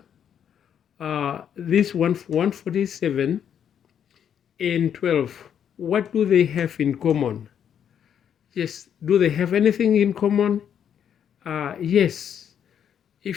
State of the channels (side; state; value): right; quieter; 8.7 dB